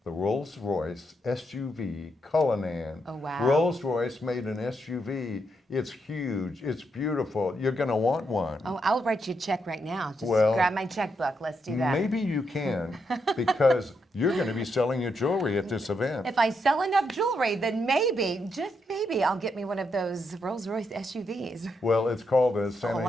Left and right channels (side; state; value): both; normal; correlation 0.80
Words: the Rolls-Royce SUV Cullinan. Oh, wow. Rolls-Royce made an SUV. It's huge. It's beautiful. You're going to want one. Oh, I'll write you a check right now. Just Well, grab my checkbook. Let's do that. Maybe you can, because you're going to be selling your jewelry at this event. If I sell enough jewelry, then maybe, just maybe, I'll get me one of those Rolls-Royce SUVs. Well, it's called the a Santa